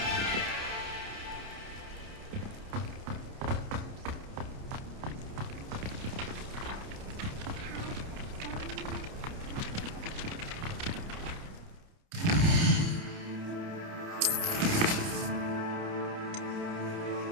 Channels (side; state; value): left; late; 29 ms